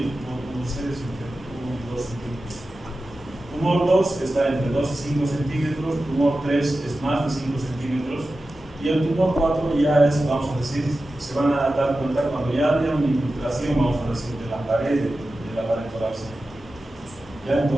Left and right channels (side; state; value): both; normal; correlation 0.93